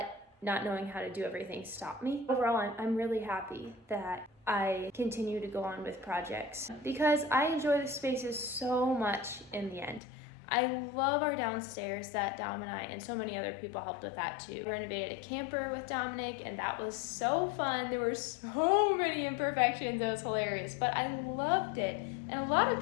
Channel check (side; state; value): right; drops out; at 10.0 s